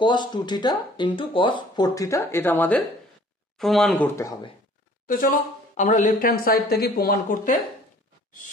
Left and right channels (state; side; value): normal; both; correlation 0.53